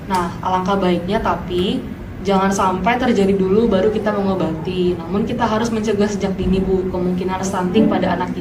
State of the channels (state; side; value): identical; both; correlation 1.00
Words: Nah, alangkah baiknya tapi jangan sampai terjadi dulu baru kita mengobati. Namun kita harus mencegah sejak dini Bu kemungkinan stunting pada anak